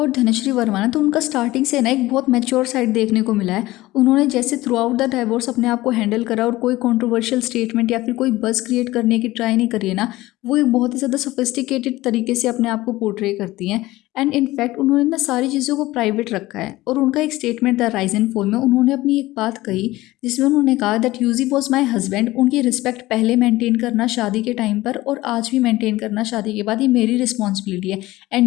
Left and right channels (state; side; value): quieter; right; 17.9 dB